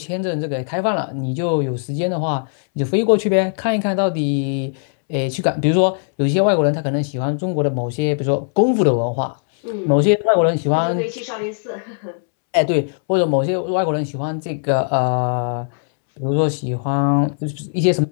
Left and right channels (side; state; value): right; silent; 66 dB below the other